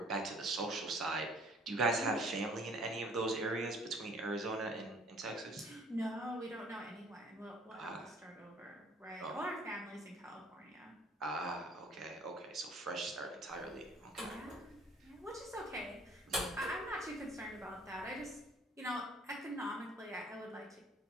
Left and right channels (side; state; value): both; normal; correlation 0.55